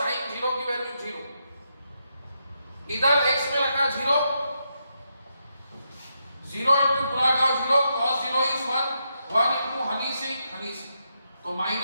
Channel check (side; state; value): both; inverted; correlation -0.82